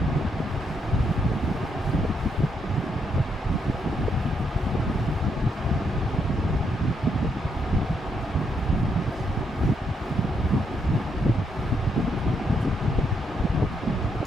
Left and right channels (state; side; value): normal; both; correlation 0.76